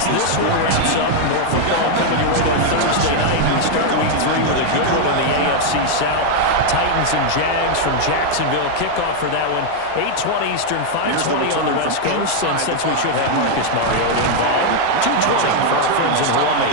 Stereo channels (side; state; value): both; different; correlation 0.00